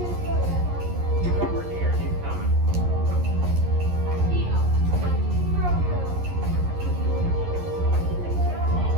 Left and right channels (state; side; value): late; left; 11 ms